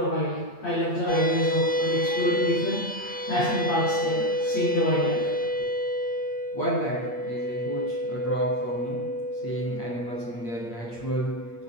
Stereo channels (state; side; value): late; right; 8.5 ms